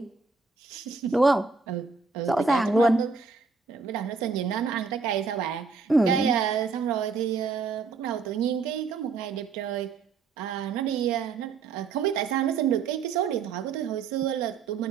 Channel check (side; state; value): left; quieter; 4.8 dB